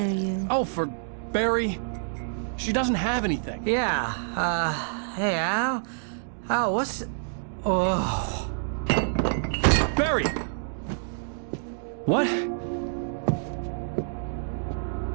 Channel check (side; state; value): left; silent; digital silence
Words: you. Oh, for Barry. She doesn't have anything. Yeah, hey, Al? Al, what's... Oh... Barry! What?